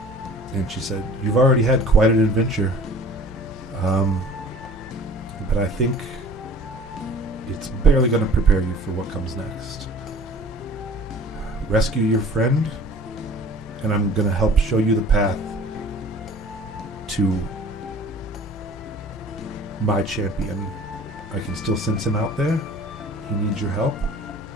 And she said, you've already had quite an adventure. But I think it's barely going to prepare you for what comes next. Rescue your friend, and I'm going to help show you the path to my champion. I can still sense him out there. He needs your help.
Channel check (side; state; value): both; normal; correlation 0.47